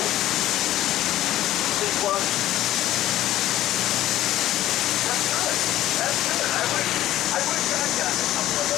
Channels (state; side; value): quieter; right; 14.0 dB